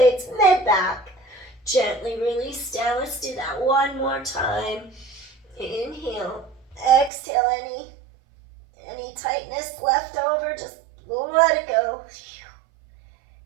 mid-back. Gently release down. Let's do that one more time. Inhale, exhale, any tightness left over, just let it go.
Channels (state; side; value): drops out; left; at 7.1 s